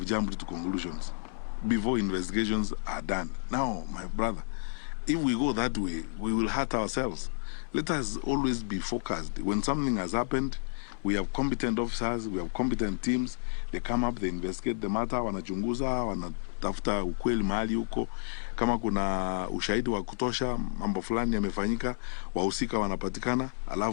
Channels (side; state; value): right; silent; 57 dB below the other